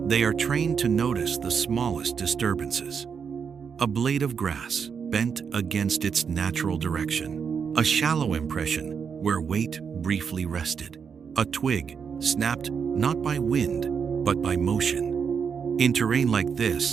They are trained to notice the smallest disturbances. A blade of grass bent against its natural direction, a shallow impression where weight briefly rested, a twig snapped not by wind but by motion. In terrain like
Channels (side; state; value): left; quieter; 6.5 dB